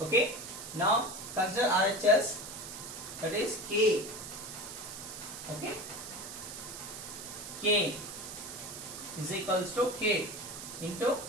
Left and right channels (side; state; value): right; noise; hiss, 10 dB below the sound